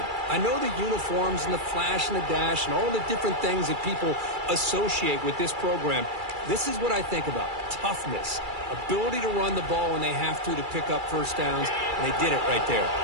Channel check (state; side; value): late; left; 2.3 ms